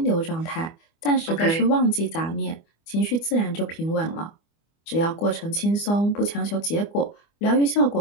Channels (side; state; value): right; late; 25 ms